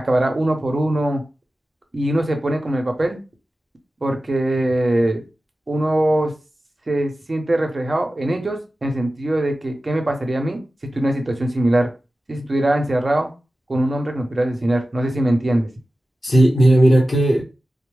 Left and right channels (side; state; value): both; normal; correlation 0.95